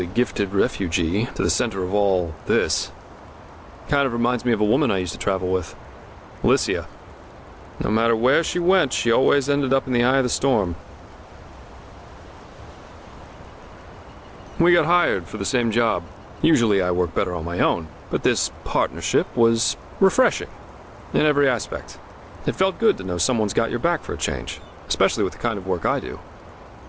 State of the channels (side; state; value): both; identical; correlation 1.00